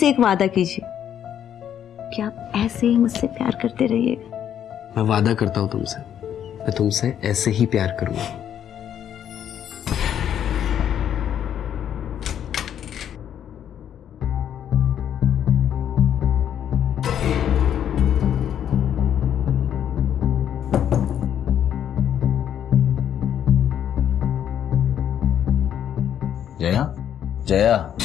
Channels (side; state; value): right; quieter; 9.7 dB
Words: एक वादा कीजिए कि आप ऐसे ही मुझसे प्यार करते रहिएगा। मैं वादा करता हूँ तुमसे, मैं तुमसे ऐसे ही प्यार करूंगा। जया, जया,